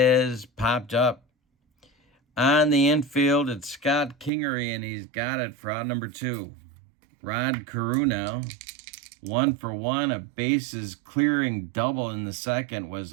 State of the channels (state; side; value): drops out; left; at 4.3 s